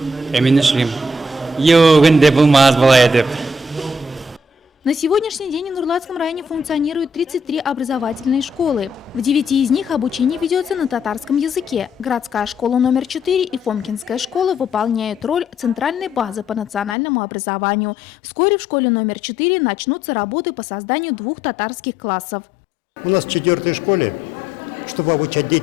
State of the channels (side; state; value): right; drops out; at 16.9 s